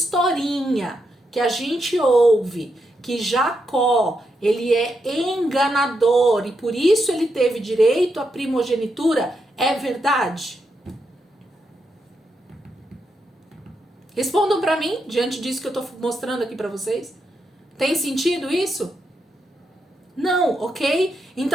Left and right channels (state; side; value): normal; both; correlation 0.83